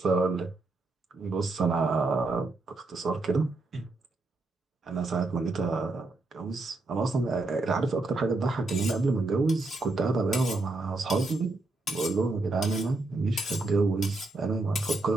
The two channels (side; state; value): left; quieter; 3.2 dB